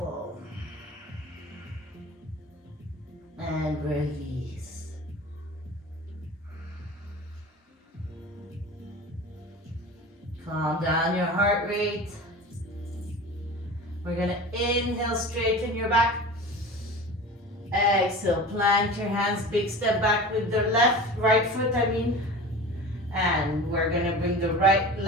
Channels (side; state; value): both; normal; correlation 0.35